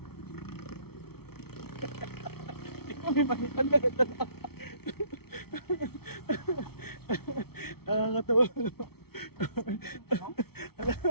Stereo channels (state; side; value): late; right; 0.95 ms